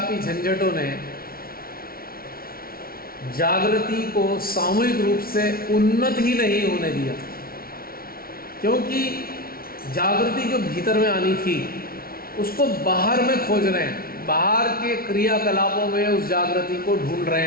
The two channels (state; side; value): late; right; 0.43 ms